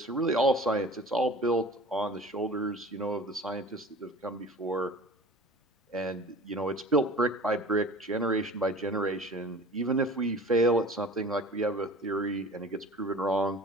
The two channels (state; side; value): normal; both; correlation 0.41